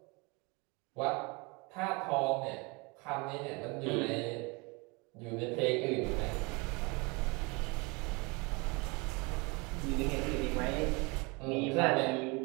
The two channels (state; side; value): quieter; left; 28.2 dB